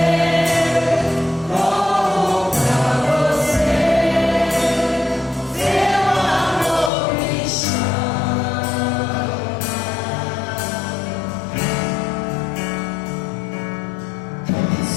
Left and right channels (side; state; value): right; drops out; at 6.9 s